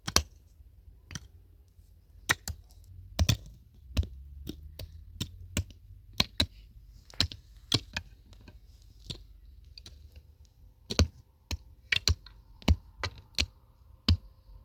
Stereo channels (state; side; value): identical; both; correlation 1.00